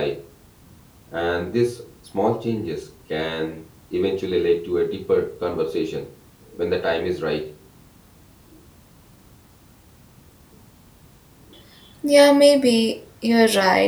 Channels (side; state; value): both; identical; correlation 1.00